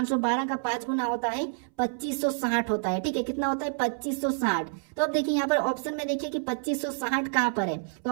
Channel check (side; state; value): left; silent; 59 dB below the other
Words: का 5 गुना होता है 2560 होता है। ठीक है, कितना होता है 2560। तो अब देखिए यहाँ पर ऑप्शन में देखिए कि 2560 कहाँ पर है, तो